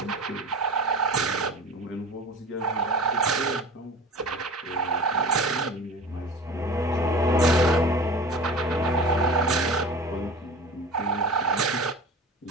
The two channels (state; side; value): normal; both; correlation 0.37